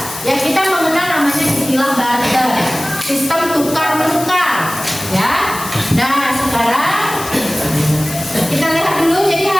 ya kita mengenal namanya istilah barter. Sistem tukar menukar, ya. Nah sekarang kita lihat dulu. Jadi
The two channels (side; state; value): left; noise; hiss, 11 dB below the sound